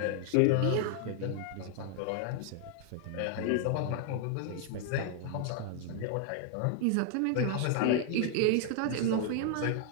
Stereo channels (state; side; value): different; both; correlation 0.00